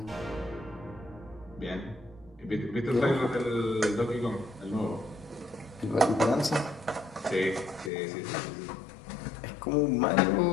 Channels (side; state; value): right; drops out; at 7.9 s